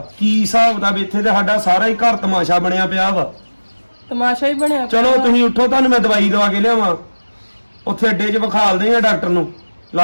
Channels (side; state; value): both; inverted; correlation -1.00